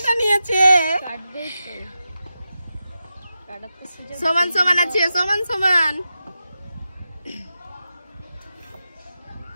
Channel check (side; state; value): both; inverted; correlation -0.90